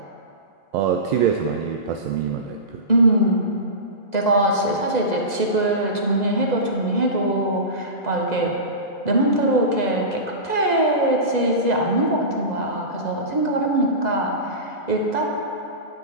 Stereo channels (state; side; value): late; right; 2.0 ms